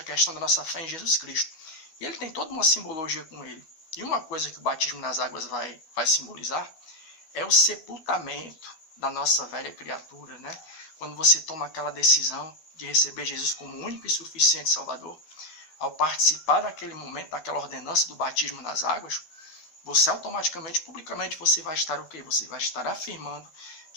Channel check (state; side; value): late; right; 12 ms